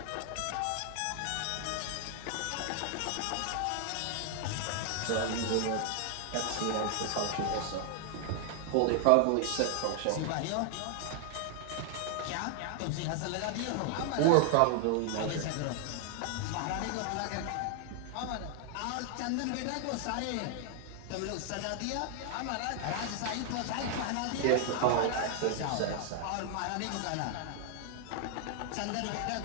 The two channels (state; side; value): different; both; correlation 0.00